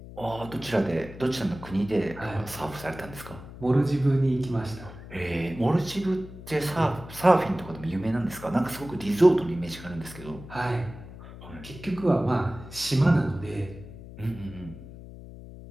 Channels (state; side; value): noise; left; hum, 15 dB below the sound